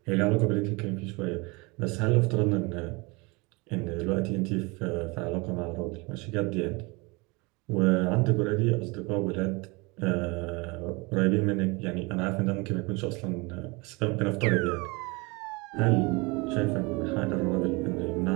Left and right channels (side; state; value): left; quieter; 26.6 dB